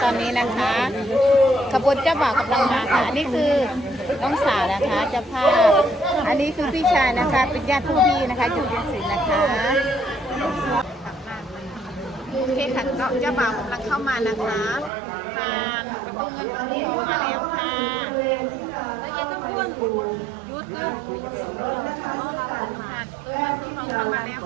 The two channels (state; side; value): drops out; left; at 14.9 s